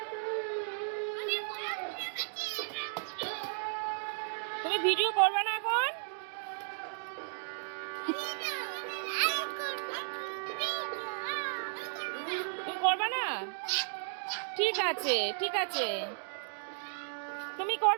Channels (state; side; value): silent; left; digital silence